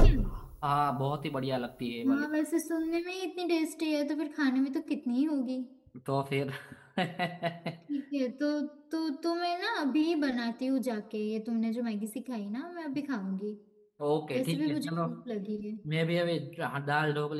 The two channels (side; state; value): both; identical; correlation 1.00